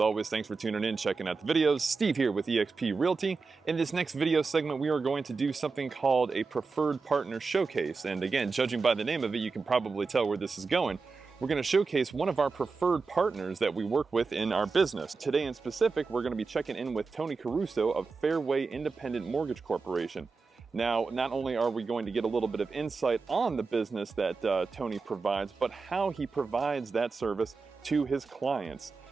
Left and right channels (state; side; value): quieter; left; 4.5 dB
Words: always, thanks for tuning in, checking out the videos. Steve here with eXp Realty. In this next video segment, we are going to do something called a preferred partner showcase. And again, judging by the name of it, you can probably tell where this is going. We're going to showcase one of our preferred partners that we work with in our business. Today in specific, we're going to be checking in with Tony Caruso of Fairway Independent Mortgage Corporation. Now, not only are we going to get a little bit of insight on the business that Tony provides, but how he provides that service to his clients.